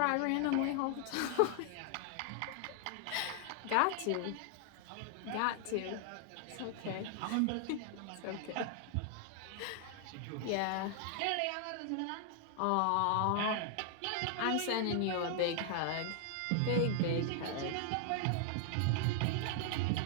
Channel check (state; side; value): different; both; correlation 0.00